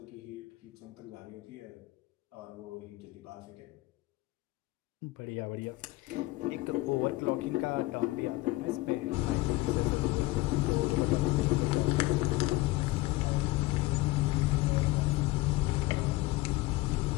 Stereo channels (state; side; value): quieter; right; 20.0 dB